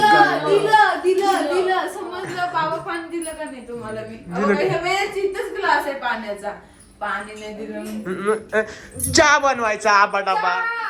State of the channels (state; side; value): identical; both; correlation 1.00